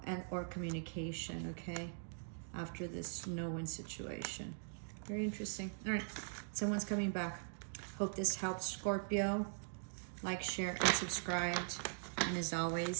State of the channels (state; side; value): silent; left; digital silence